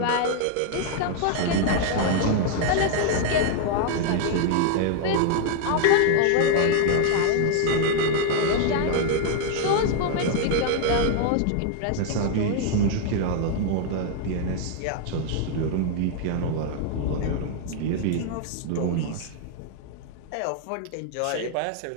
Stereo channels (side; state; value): both; different; correlation 0.00